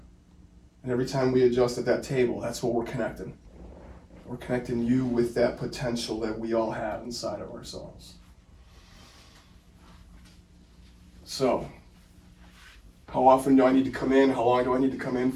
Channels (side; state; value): both; identical; correlation 1.00